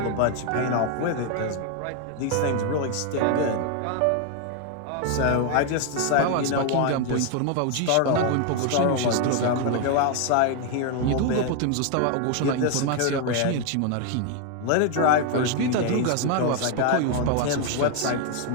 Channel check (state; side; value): different; both; correlation 0.01